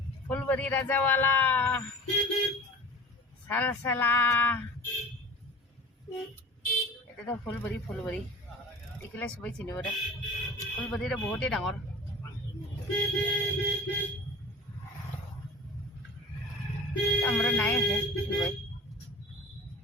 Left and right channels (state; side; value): normal; both; correlation 0.39